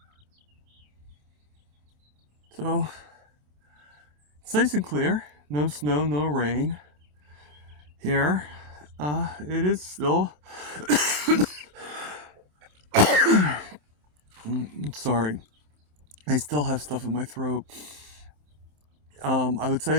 So it's nice and clear. No snow, no rain. Here, it is still. Sorry, I still have stuff in my throat. I would say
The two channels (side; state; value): left; late; 27 ms